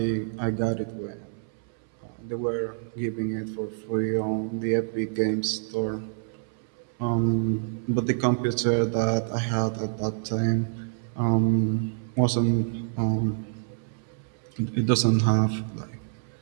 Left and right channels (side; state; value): left; silent; 60 dB below the other